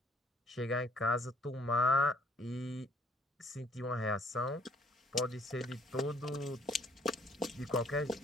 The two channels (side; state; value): both; normal; correlation 0.63